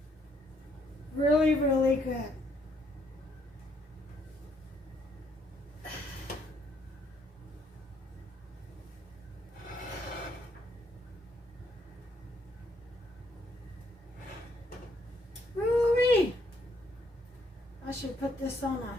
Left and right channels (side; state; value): both; normal; correlation 0.71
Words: Really, really good. Woo-wee. I should put this on